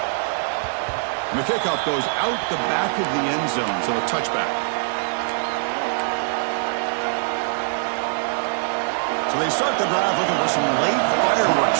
And the kickoff goes out the back of the end zone, so a touchback. So they start the drive looking for some late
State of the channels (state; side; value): silent; left; digital silence